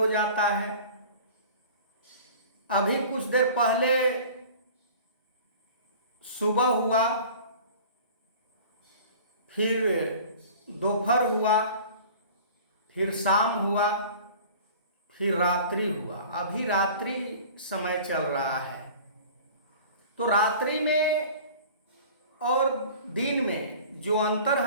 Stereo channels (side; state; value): both; inverted; correlation -0.43